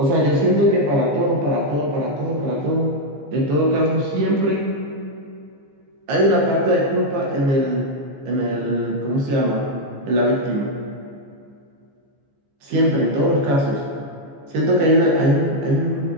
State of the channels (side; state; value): left; late; 15 ms